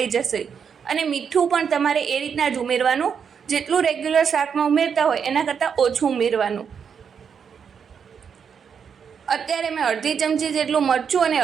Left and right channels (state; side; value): quieter; left; 7.0 dB